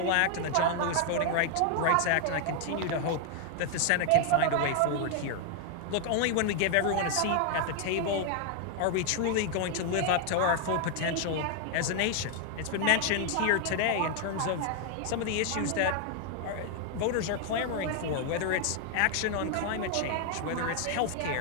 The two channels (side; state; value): both; different; correlation 0.00